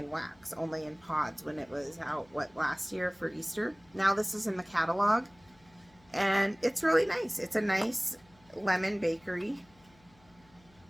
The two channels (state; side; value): noise; left; hum, 29 dB below the sound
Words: wax, only in pods when it was out, last year for Easter. Now this is in the catalog, and it's really nice. It's a nice lemon bakery,